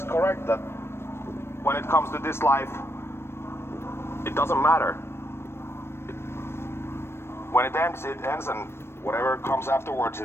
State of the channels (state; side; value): late; right; 0.12 ms